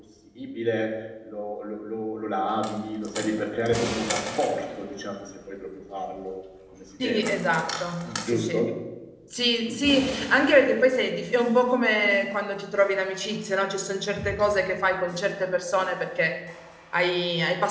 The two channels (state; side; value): identical; both; correlation 1.00